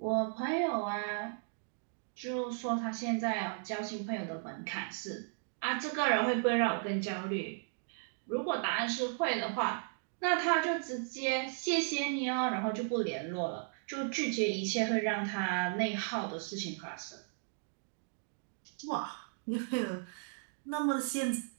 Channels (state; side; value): silent; left; digital silence